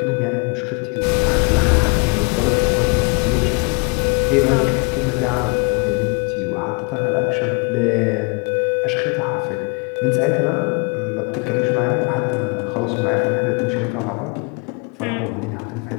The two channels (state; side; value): quieter; right; 31.6 dB